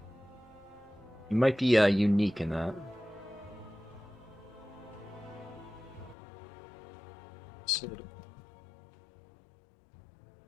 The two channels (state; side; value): drops out; right; at 6.2 s